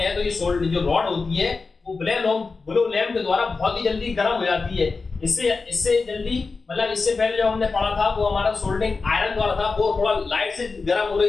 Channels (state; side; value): quieter; right; 4.2 dB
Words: हैं तो ये जो रॉड होती है वो बिलो लैंप के द्वारा बहुत ही जल्दी गर्म हो जाती है। इससे जल्दी, मतलब इससे पहले जो हमने पढ़ा था वो हमारा सोल्डरिंग आयरन द्वारा था, वो थोड़ा लाइट से गर्म हो